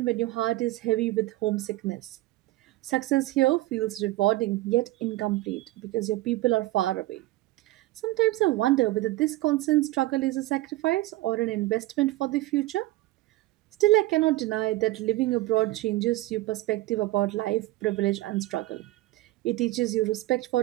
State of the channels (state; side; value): quieter; left; 17.8 dB